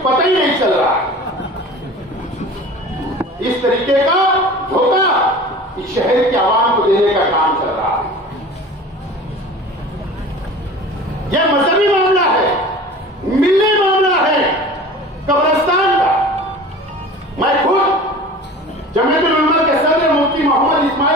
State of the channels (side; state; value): both; normal; correlation 0.39